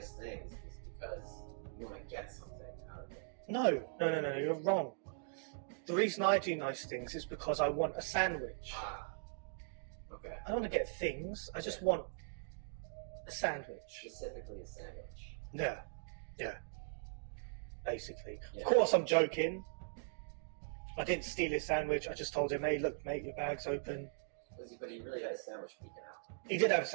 things is because you want to get something out of it. No, you're wrong. The reason I do nice things is because I want a sandwich. Okay. I don't want to get things, I just want a sandwich. Specifically a sandwich. Yeah. Basically. Yeah. Of course I'm joking. I didn't steal his sandwich, I just told him, hey look mate, your bag's open. But he really had a sandwich peeking out. He did have a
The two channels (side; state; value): left; silent; digital silence